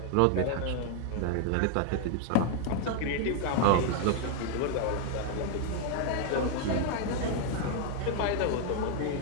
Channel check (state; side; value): different; both; correlation 0.00